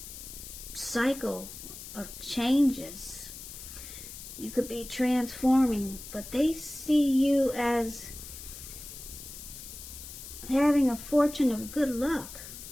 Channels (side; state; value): left; noise; hiss, 12 dB below the sound